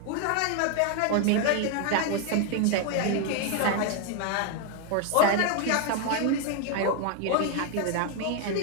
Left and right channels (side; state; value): both; different; correlation 0.01